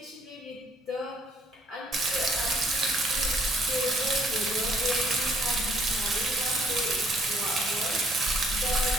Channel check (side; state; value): both; normal; correlation 0.65